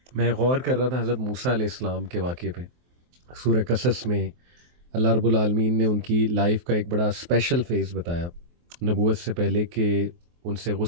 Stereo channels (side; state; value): left; late; 23 ms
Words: میں غور کر رہا تھا حضرت موسیٰ علیہ السلام کے واقعے پہ. سورہ قصص میں اللہ رب العالمین نے ان کی لائف کا ایک بڑا اسپیشل فیز بتایا نبوت سے پہلے، کہ ان سے